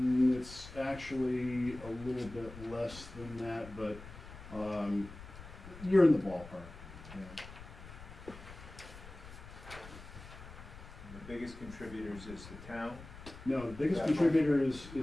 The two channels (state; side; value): noise; left; rumble, 15 dB below the sound